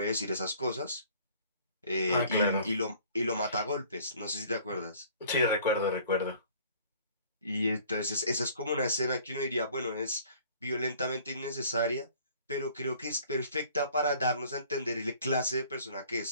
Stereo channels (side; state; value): both; inverted; correlation -0.53